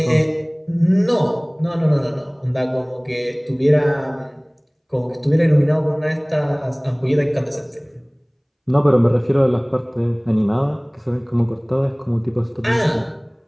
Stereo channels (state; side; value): identical; both; correlation 1.00